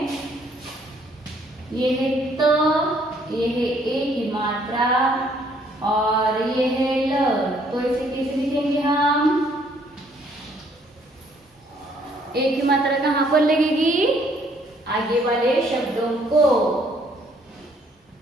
ये है त, ये है ए की मात्रा और ये है ल, तो इसे कैसे लिखेंगे हम? ए की मात्रा कहाँ पर लगेगी? आगे वाले शब्दों को,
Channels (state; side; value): normal; both; correlation 0.65